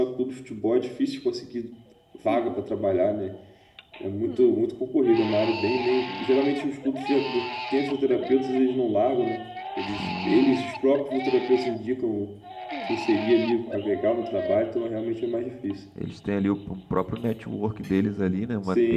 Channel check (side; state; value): both; identical; correlation 1.00